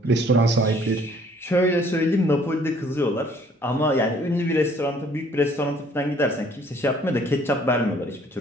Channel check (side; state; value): both; normal; correlation 0.59